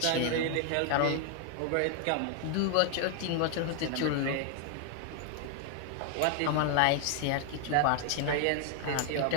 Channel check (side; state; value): both; different; correlation 0.00